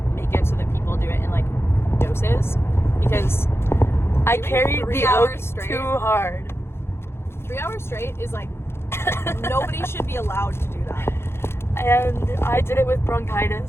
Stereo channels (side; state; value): right; late; 0.12 ms